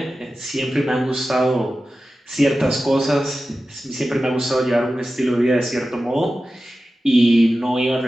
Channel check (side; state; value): both; normal; correlation 0.94